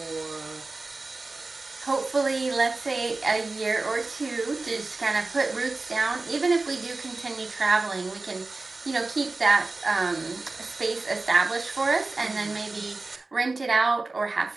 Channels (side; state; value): left; quieter; 3.4 dB